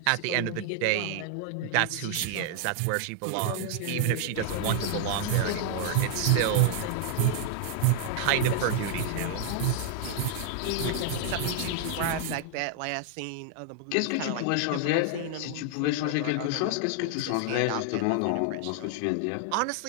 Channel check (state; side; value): different; both; correlation 0.00